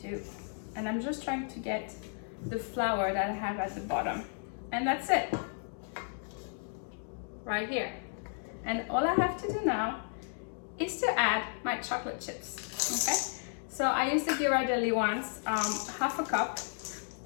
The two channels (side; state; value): right; silent; 55 dB below the other